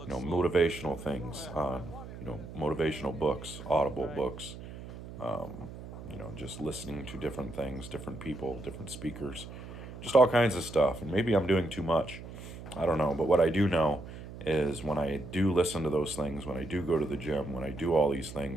you know, motivational things on, you know, motivational books, audible books, you know, just listening to different things, different people, different speakers, just all kinds of stuff. And maybe I'm doing too much. I don't know. But what I do know is when I do listen to those things, when I do go to the gym, when I do all these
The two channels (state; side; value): noise; right; hum, 12 dB below the sound